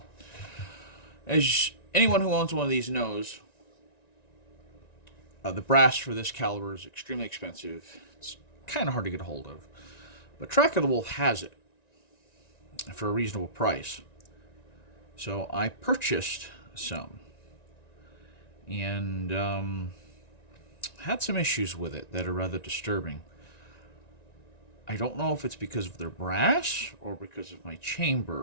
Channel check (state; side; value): late; right; 1.9 ms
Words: as anyone who owns one of these knows, the brass for this caliber is extremely expensive. It's kind of hard to get a hold of. But Track of the Wolf has it for a reasonable price. So I purchased some and had some issues with it that are rather disturbing. I don't know if it's because of their brass or because of my